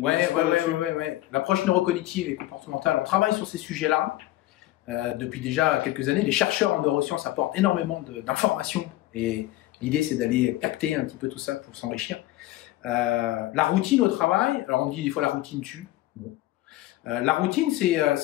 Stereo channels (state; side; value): quieter; right; 16.3 dB